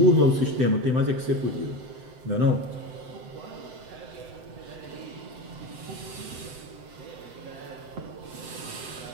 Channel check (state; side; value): late; left; 7.8 ms